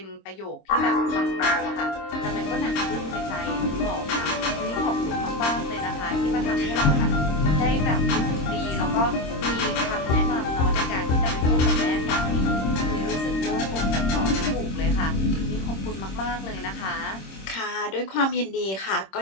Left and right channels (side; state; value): right; late; 26 ms